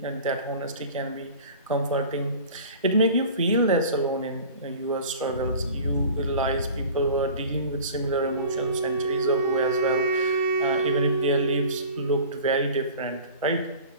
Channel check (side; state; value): both; inverted; correlation -0.41